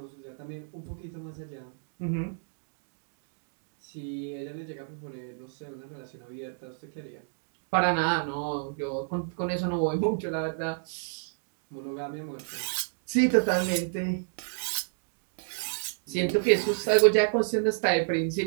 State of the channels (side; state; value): left; silent; digital silence